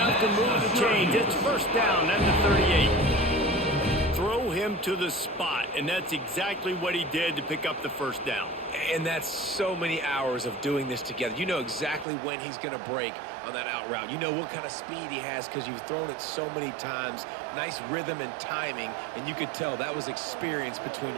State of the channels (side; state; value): left; drops out; at 12.1 s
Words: to move the chains. It's first down at the 38. Throw him to the spot, and that's exactly what he did to pick up the first down. And that's so many hours of doing this together. You know exactly when he's going to break on that out route. You know what kind of speed he has because you've thrown it so many times. Nice rhythm and timing, and you could tell that was experience between